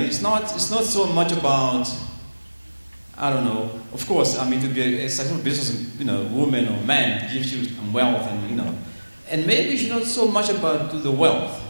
not so much about, I don't know, of course, to be a successful business, woman or man gives you some wealth and maybe it's not so much about the wealth.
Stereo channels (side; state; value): both; inverted; correlation -1.00